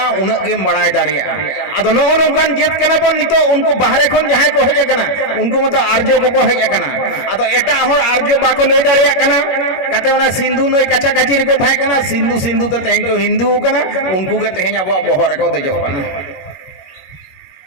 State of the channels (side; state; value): right; late; 21 ms